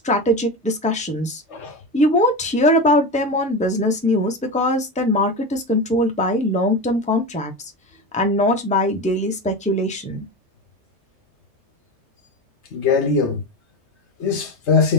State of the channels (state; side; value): normal; both; correlation 0.22